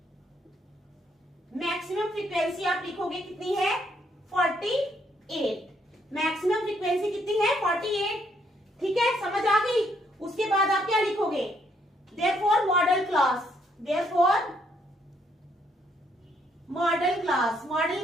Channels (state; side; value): normal; both; correlation 0.71